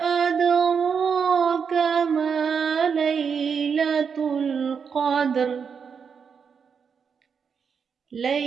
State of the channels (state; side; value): quieter; left; 6.4 dB